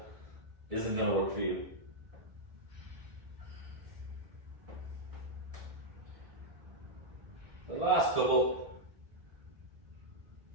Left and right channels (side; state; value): left; late; 1.4 ms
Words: isn't going to work for you. The last couple,